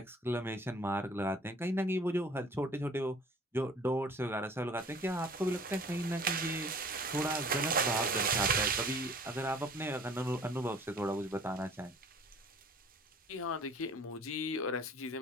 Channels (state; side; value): normal; both; correlation 0.50